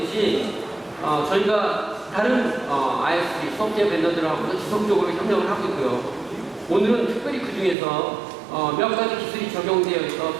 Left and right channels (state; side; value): drops out; left; at 7.8 s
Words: 저희가 다른 ISP 소프트웨어 벤더들하고도 지속적으로 협력을 하고 있고요. 오늘은 특별히 그 중에서 몇 가지 기술이 적용되어